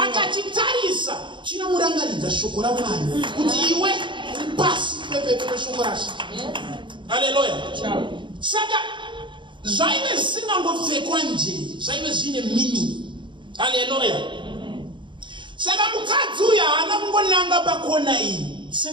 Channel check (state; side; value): late; left; 0.23 ms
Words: akachitarisa chinomurangaridza shoko raMwari kuti iwe pasi pepe shoko raShe. Hallelujah. Saka zvaive zvisingangopfekwa nje, zvaive zvine meaning. Hallelujah. Saka mukadzi uyu haana kungonanga pakona iyi